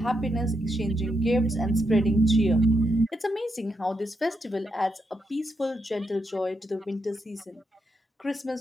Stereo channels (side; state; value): both; normal; correlation 0.82